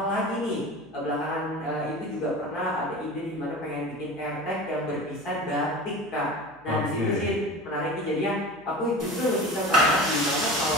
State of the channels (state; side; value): noise; left; hum, 30 dB below the sound